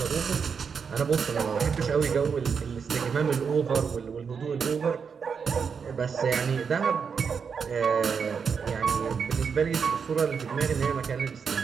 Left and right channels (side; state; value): left; quieter; 6.2 dB